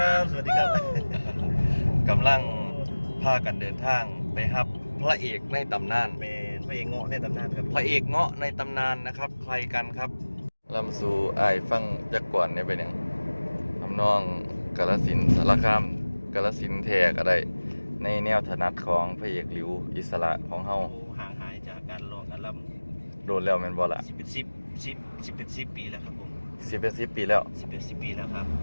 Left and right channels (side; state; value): both; inverted; correlation -1.00